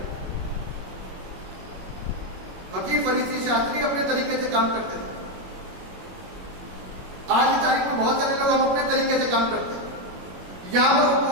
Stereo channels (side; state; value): left; late; 21 ms